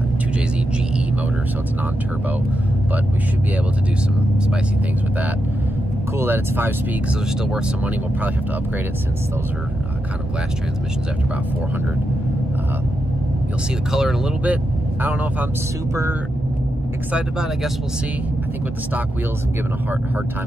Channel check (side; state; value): both; normal; correlation 0.86